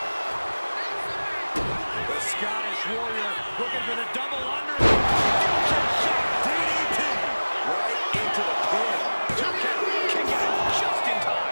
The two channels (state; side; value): inverted; both; correlation -1.00